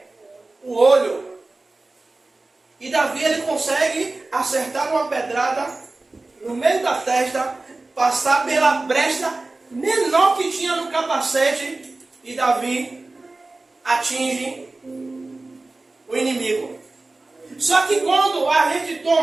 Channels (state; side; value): quieter; left; 3.2 dB